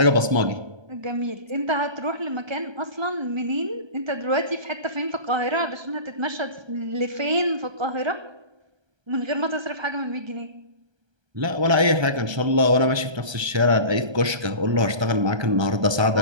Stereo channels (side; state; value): left; late; 1.3 ms